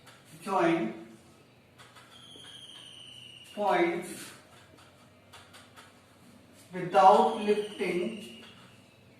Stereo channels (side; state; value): both; identical; correlation 1.00